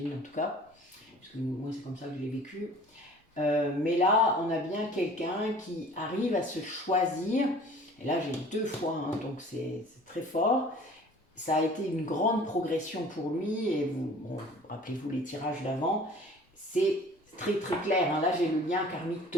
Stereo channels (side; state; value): both; normal; correlation 0.47